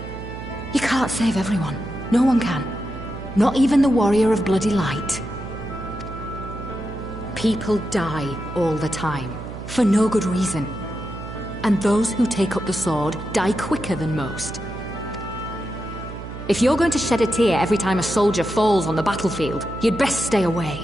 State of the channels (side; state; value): right; noise; hum, 10 dB below the sound